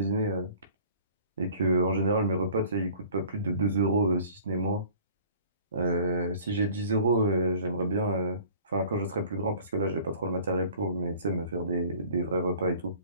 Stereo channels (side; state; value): both; inverted; correlation -0.50